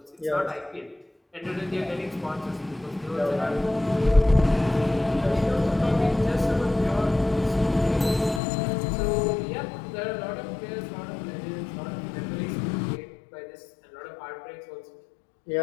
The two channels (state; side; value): drops out; right; at 8.4 s